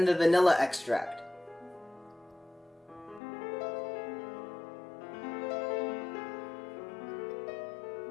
the vanilla extract.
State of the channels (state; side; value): drops out; right; at 3.2 s